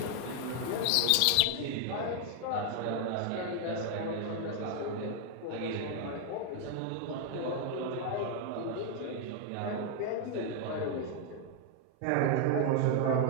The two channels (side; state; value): both; different; correlation 0.00